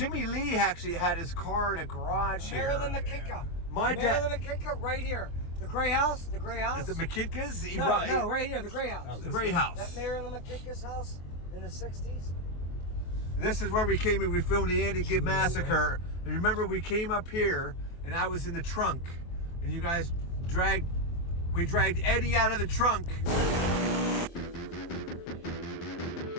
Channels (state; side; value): late; right; 23 ms